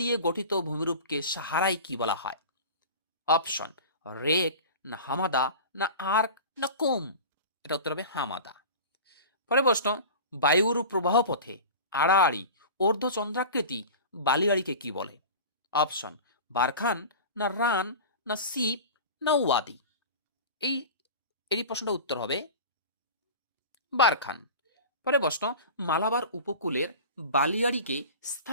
দিয়ে গঠিত ভূমিরূপকে সাহারায় কি বলা হয়? অপশন, রেক না হামাদা না আর্ক না কোম? এটা উত্তর হবে হামাদা। পরে প্রশ্ন, বায়ুর প্রবাহ পথে আড়াআড়ি অর্ধচন্দ্রাকৃতি বালিয়াড়িকে কি বলে? অপশন, বারখান না রান না সিপ না ওয়াদি? এই প্রশ্নটা উত্তর হবে বারখান। পরে প্রশ্ন, মালাবার উপকূলের বালিয়াড়িকে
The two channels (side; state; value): both; inverted; correlation -0.34